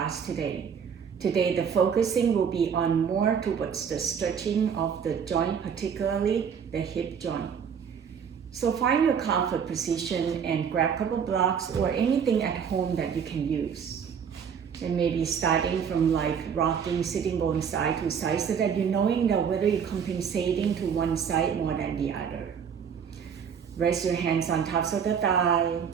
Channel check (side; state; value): left; quieter; 7.3 dB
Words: today. Today the focusing will be on more towards the stretching of the joint, particularly the hip joint. So find your comfort position and grab a couple blocks or anything at home that you can use. And maybe starting from like rocking sitting bone side to side so that you're knowing that whether you're compensating to one side more than the other. Rest your hands on tops of the thigh.